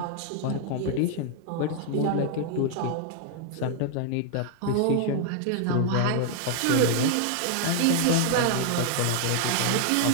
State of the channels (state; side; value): different; both; correlation 0.00